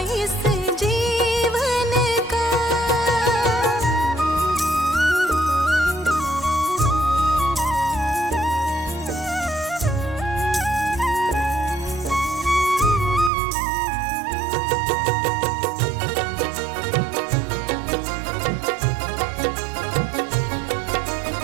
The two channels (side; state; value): left; drops out; at 13.3 s